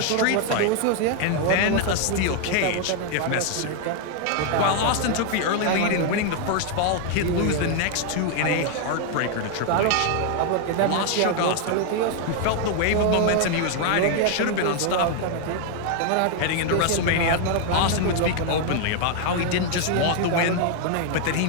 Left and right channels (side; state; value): both; different; correlation 0.00